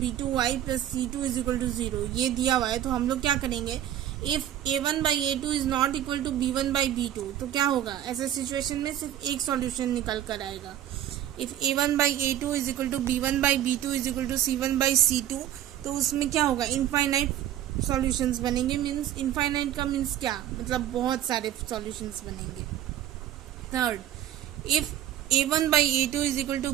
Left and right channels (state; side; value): quieter; left; 11.7 dB